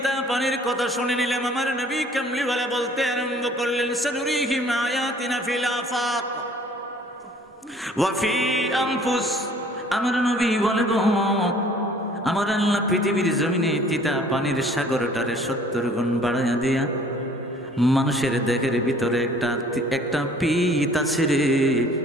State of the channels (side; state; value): both; normal; correlation 0.54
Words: পানির কথা শুনে নিলাম। আমার নবী কামলি ওয়ালা বলতে আরম্ভ করলেন, সানুরিহিম আয়াতিনা ফিল আফাক ওয়া ফি আনফুস। আমার নবী বলে গো, আমার আল্লাহ পৃথিবীর জমিনে তিতা পানির সাগরটারে 70 গুণ বাড়াইয়া দিয়া মানুষের দেহের ভিতরে একটা পিত আছে রে,